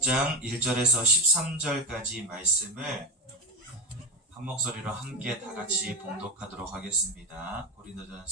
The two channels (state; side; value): normal; both; correlation 0.16